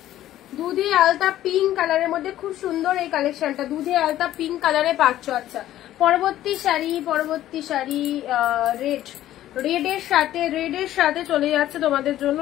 দুধে আলতা পিঙ্ক কালারের মধ্যে খুব সুন্দর এই কালেকশনটা, দুধে আলতা পিঙ্ক কালারে পাচ্ছ। আচ্ছা পরবর্তী শাড়ি, পরবর্তী শাড়ি রেড, রেড এর সাথে চলে যাচ্ছে তোমাদের জন্য,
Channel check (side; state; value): right; quieter; 13.3 dB